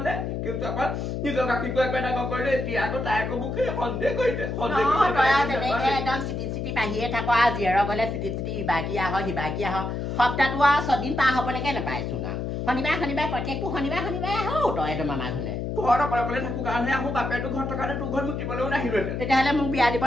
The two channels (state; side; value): noise; left; hum, 3 dB below the sound